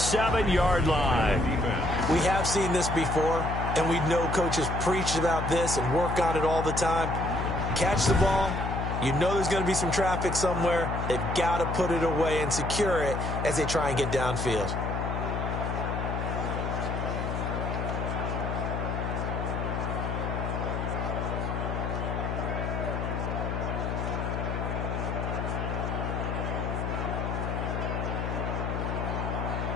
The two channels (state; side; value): noise; left; hum, 2 dB below the sound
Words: line. We have seen this before, and we know coaches preach about this and work on it all the time. Catch the ball. You know there's going to be some traffic somewhere. They've got to put it away and secure it as they try and get downfield.